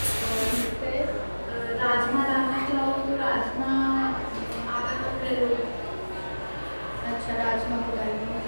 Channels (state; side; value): inverted; both; correlation -1.00